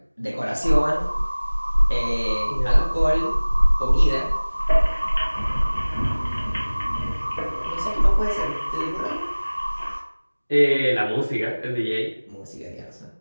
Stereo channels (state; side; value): inverted; both; correlation -1.00